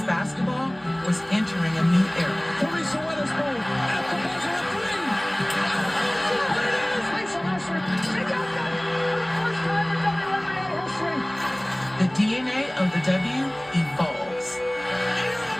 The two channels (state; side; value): noise; right; hum, 26 dB below the sound